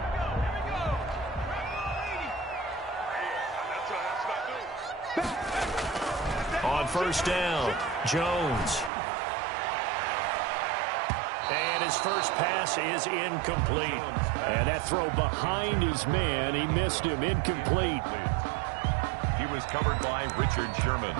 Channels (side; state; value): left; drops out; at 8.9 s